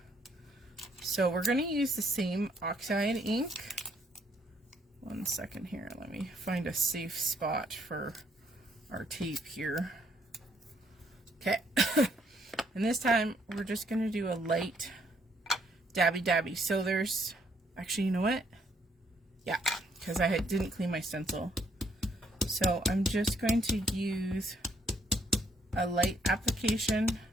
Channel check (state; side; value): normal; both; correlation 0.69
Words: So we're going to use the same oxide ink. One second here. Let me find a safe spot for our tape here. Okay. And this time we're just going to do a light dabby. So there's, actually, you know what? Yeah, because I didn't clean my stencil. So I'm just going to use a light application